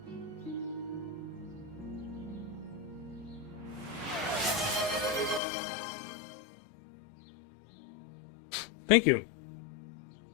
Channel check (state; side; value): drops out; right; at 5.4 s